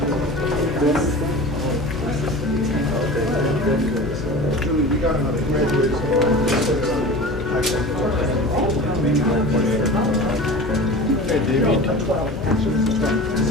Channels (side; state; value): both; normal; correlation 0.35